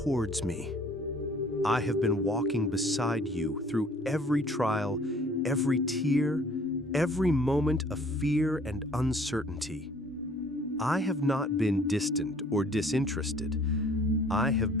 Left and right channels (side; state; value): both; normal; correlation 0.55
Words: me. I have been walking beside you through every trial, every tear, every moment of fear and uncertainty. I have not been distant or disinterested. I have